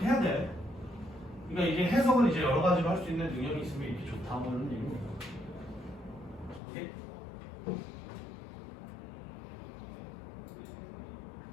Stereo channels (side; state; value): right; drops out; at 6.6 s